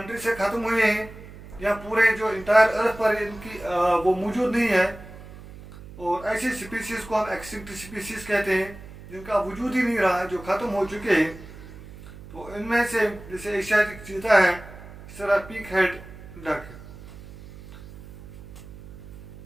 से खत्म हुए हैं या पूरे जो इंटायर अर्थ पर इनकी वो मौजूद नहीं है, और ऐसी स्पीसीज को हम एक्सटिंक्ट स्पीसीज कहते हैं जिनका वजूद ही नहीं रहा, जो खत्म हो चुके हैं। तो इनमें से जैसे एशियाटिक चीता है, इस तरह पिक हेड डक है।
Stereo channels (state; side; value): noise; right; hum, 16 dB below the sound